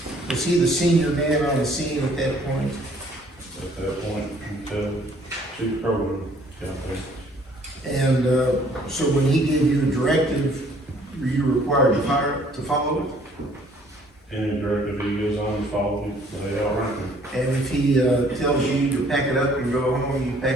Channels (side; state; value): both; normal; correlation 0.59